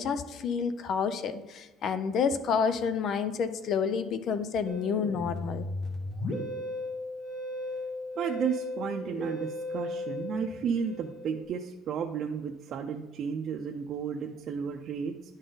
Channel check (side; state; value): both; normal; correlation 0.54